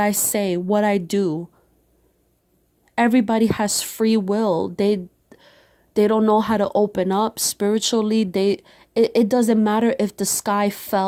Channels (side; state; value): both; identical; correlation 1.00